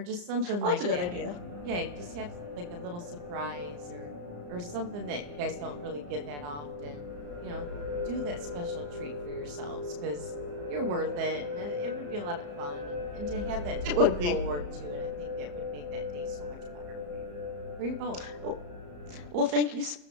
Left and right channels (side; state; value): left; late; 34 ms